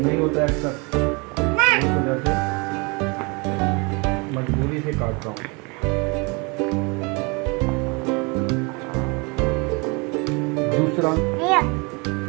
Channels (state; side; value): quieter; left; 29.6 dB